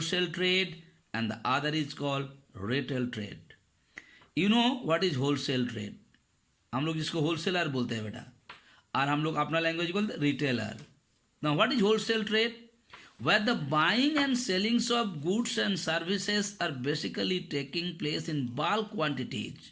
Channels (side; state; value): both; identical; correlation 1.00